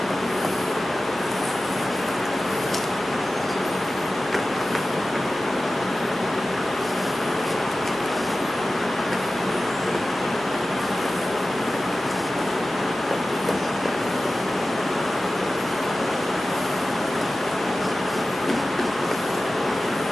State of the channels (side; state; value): both; normal; correlation 0.95